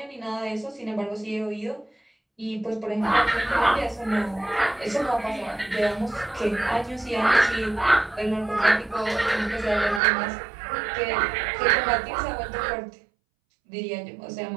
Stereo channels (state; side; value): drops out; left; at 10.0 s